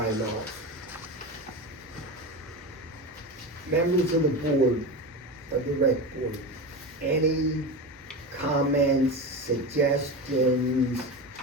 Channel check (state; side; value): normal; both; correlation 0.23